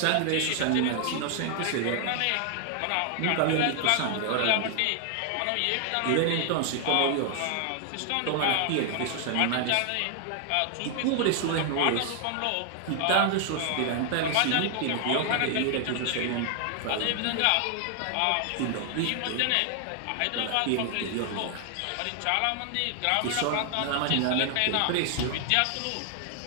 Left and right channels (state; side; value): different; both; correlation 0.00